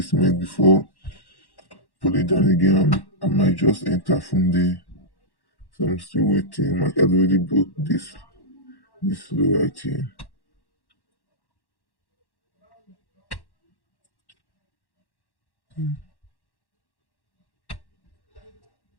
before pull it down again, I might just enter from there. So I'm still waiting. Market has already broke this low right here.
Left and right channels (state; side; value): late; right; 1.1 ms